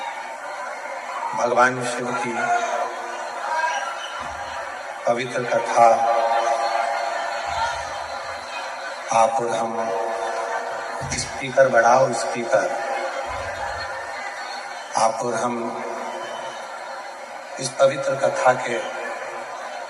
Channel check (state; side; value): identical; both; correlation 1.00